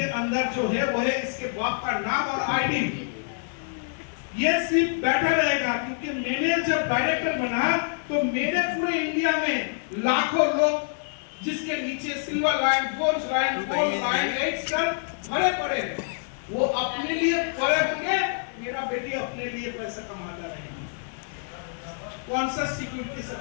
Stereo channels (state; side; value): silent; right; digital silence